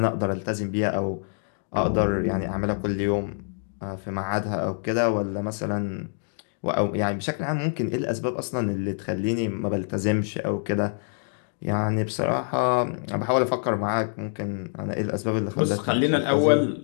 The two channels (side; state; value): right; silent; digital silence